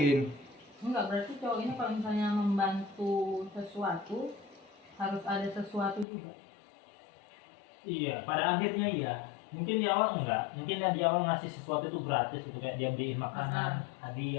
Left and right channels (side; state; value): right; drops out; at 6.1 s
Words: Enggak, berarti cowok ini kalau misalnya membantu sesuatu harus ada sesuatu juga. Iya, pada akhirnya iya. Mungkin di awal enggak, mungkin dia di awal ngasih sesuatu itu gratis gitu, kayak dia beliin makanan,